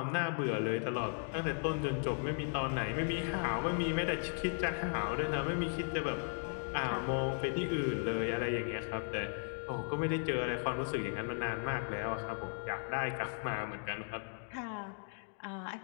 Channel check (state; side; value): silent; right; 53 dB below the other